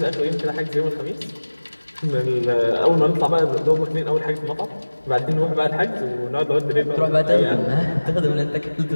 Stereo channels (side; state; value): both; inverted; correlation -1.00